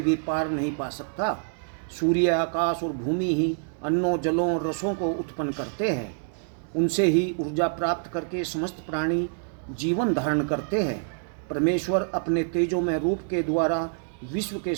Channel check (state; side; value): silent; left; digital silence